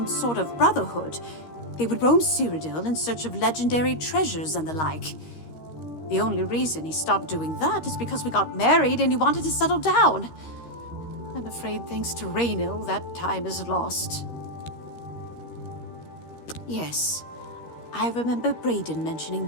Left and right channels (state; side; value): late; right; 13 ms